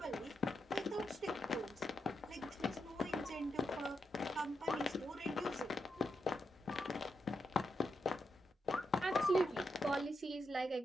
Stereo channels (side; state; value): both; normal; correlation 0.84